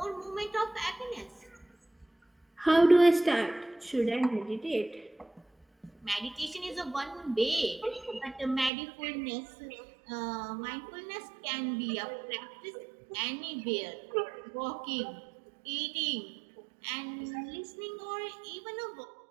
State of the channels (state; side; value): drops out; left; at 8.7 s